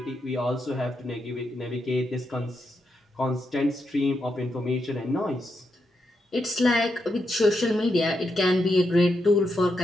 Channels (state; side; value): normal; both; correlation 0.83